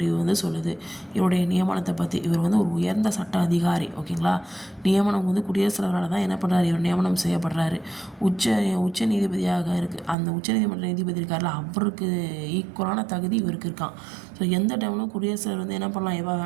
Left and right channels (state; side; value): drops out; left; at 10.2 s